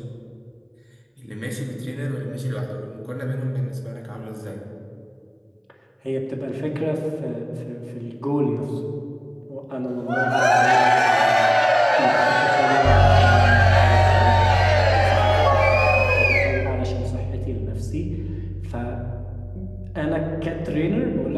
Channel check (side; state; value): both; identical; correlation 1.00